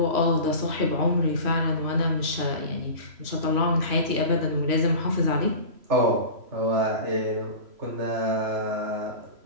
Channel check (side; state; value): left; late; 3.0 ms